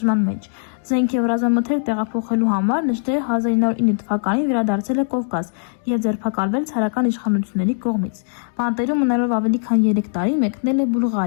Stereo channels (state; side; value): silent; right; digital silence